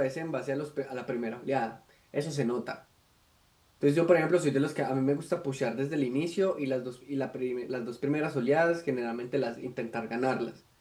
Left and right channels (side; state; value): both; identical; correlation 1.00